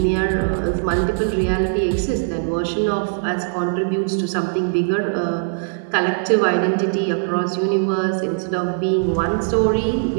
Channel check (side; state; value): left; silent; 59 dB below the other